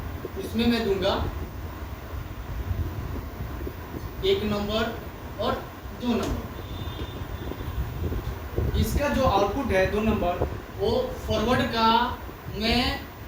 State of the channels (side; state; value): both; identical; correlation 1.00